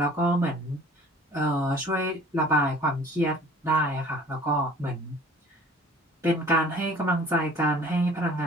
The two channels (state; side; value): normal; both; correlation 0.49